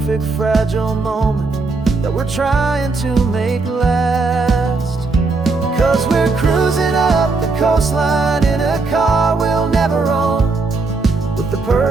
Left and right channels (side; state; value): left; quieter; 3.9 dB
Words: fragile moment that we're trying to make last. 'Cause we're cruising up the coastline in a car we'll never own, with with the